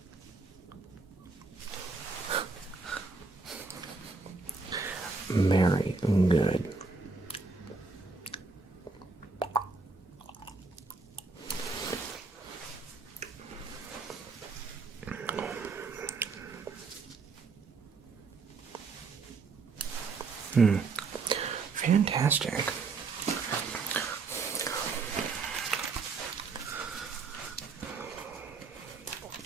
very good. Fantastic.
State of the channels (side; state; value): left; quieter; 4.3 dB